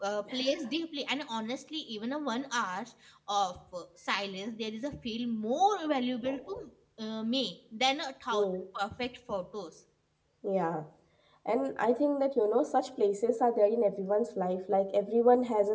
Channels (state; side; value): identical; both; correlation 1.00